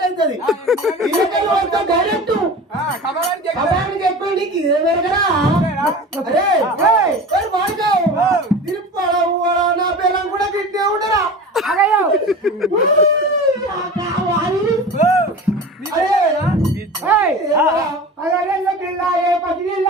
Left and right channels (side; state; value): both; normal; correlation 0.35